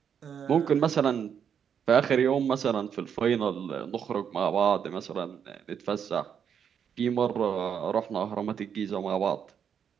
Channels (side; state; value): left; quieter; 7.8 dB